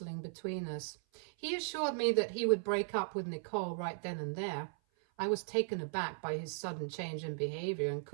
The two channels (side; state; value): left; silent; 53 dB below the other